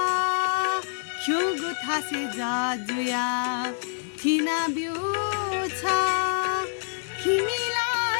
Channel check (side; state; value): right; silent; digital silence